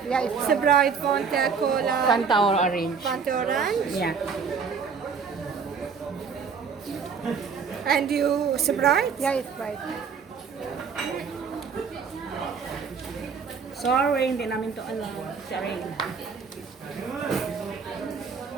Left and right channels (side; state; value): left; quieter; 5.9 dB